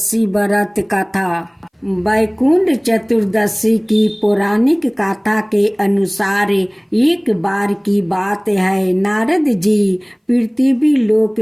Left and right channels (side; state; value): both; identical; correlation 1.00